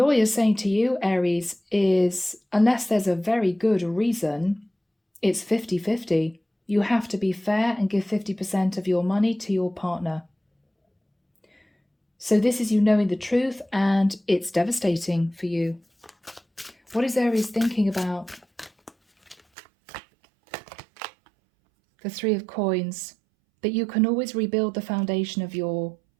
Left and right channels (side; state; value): left; drops out; at 19.4 s